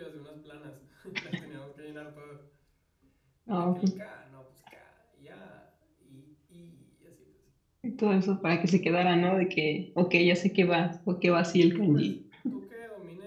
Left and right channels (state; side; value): identical; both; correlation 1.00